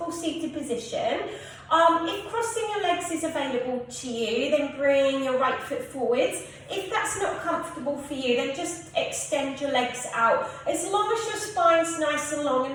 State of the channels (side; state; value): both; identical; correlation 1.00